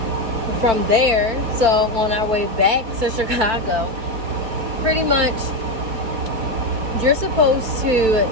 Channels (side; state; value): left; late; 4.5 ms